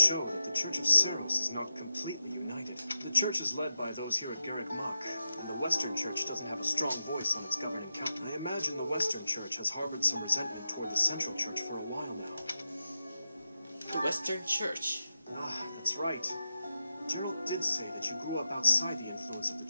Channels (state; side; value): inverted; both; correlation -0.90